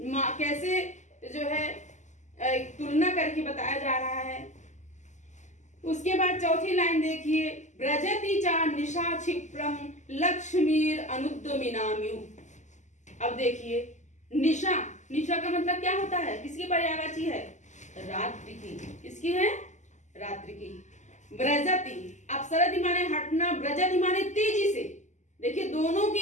कैसे जो है तुलना करके बताया जा रहा है। उसके बाद चौथी लाइन देखिए, ब्रजति चा निशा क्षिप्रम लक्ष्मीर अनुद्यमिनाम्यु। अब देखिए, निशा, निशा का मतलब क्या होता है? किसकी पर्यायवाची है? रात्रि की। किसकी है? रात्रि की। ब्रजति, अपसरति माने हटना, ब्रजति माने तेजी से। देखिए दोनों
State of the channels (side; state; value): right; late; 0.34 ms